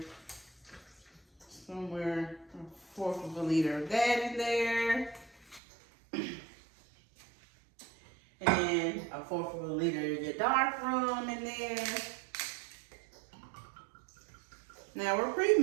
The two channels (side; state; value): left; drops out; at 5.6 s